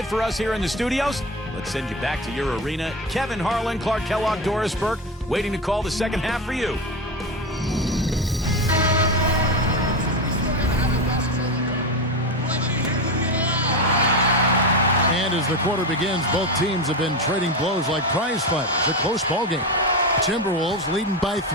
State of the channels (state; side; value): normal; both; correlation 0.19